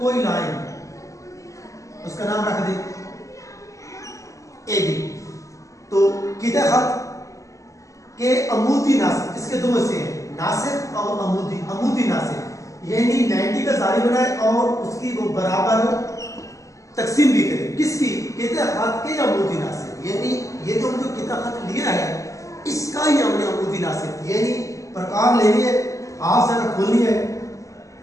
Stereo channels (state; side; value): late; right; 0.16 ms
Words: لائن، اس کا نام رکھ دیں اے بی۔ تو قطع خط کے عمودی ناصب، اس کے دو حصے ہیں، ناصب اور عمودی۔ عمودی ناصب یعنی 90 کا زاویہ بنائے اور اس کی وہ برابر تقسیم بھی کرے، کس کی؟ قطع خط کے عمودی ناصب، یعنی یہ جو ہم جو قطع خط لیا ہے اس کا ہی ہم نے عمودی ناصب، یعنی پرکار لے لیے، ہاتھ سے کھولنی ہے،